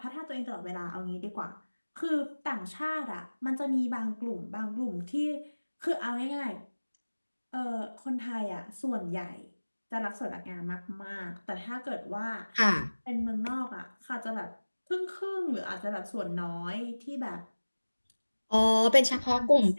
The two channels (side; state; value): both; inverted; correlation -1.00